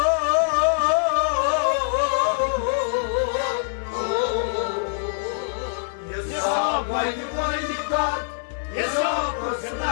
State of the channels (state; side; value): silent; right; digital silence